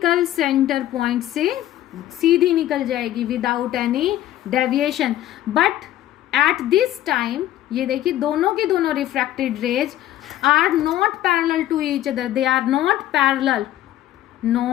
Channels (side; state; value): right; quieter; 13.3 dB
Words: सेंटर पॉइंट से सीधी निकल जाएगी without any deviation. But at this time ये देखिए दोनों के दोनों refracted rays are not parallel to each other, they are not